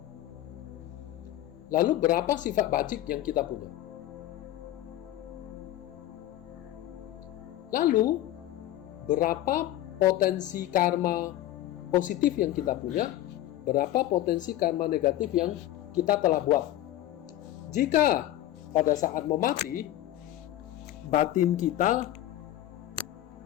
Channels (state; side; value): quieter; right; 13.8 dB